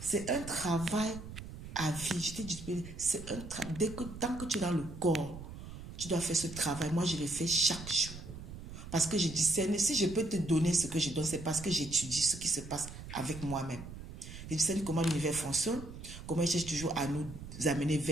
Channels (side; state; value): right; noise; rumble, 12 dB below the sound